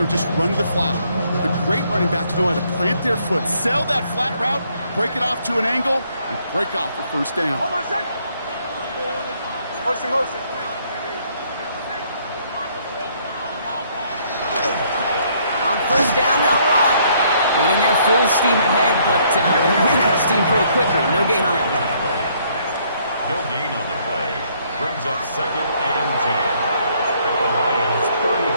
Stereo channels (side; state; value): both; inverted; correlation -0.67